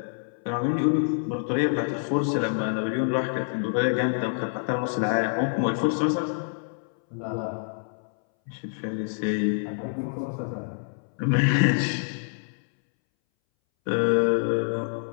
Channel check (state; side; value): silent; right; 60 dB below the other